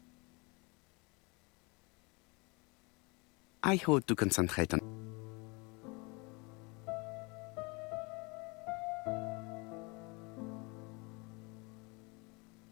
I hope to concentrate on.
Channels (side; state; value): right; quieter; 28.7 dB